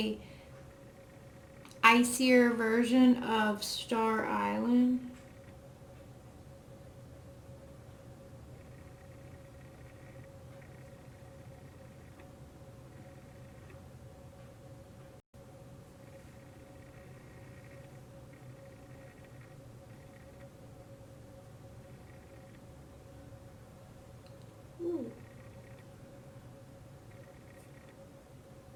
icier version of Star Island. Ooh.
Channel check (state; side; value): identical; both; correlation 1.00